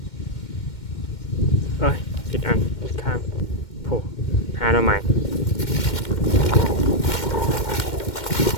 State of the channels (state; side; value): late; right; 2.1 ms